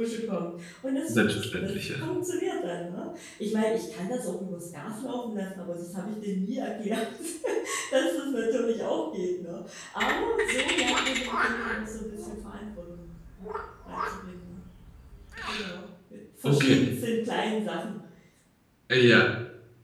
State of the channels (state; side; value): identical; both; correlation 1.00